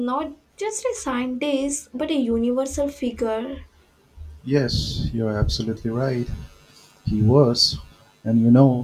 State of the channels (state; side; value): identical; both; correlation 1.00